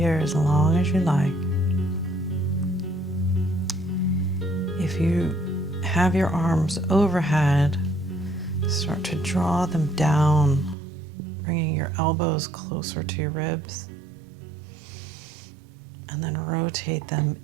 as long as you like. If you have your arms overhead, start to draw them down, bringing your elbows closer to your ribs, and then rotate them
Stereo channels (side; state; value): left; drops out; at 10.8 s